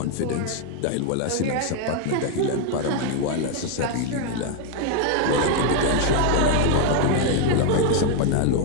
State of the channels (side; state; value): both; different; correlation 0.01